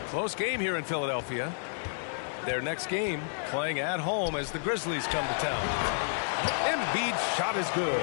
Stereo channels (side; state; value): right; silent; digital silence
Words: Close game here in Philadelphia. Their next game playing at home as the Grizzlies come to town. Embiid's shot is good.